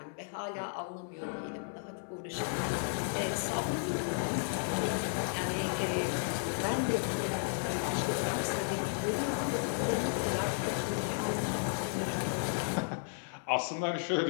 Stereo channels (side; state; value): right; silent; digital silence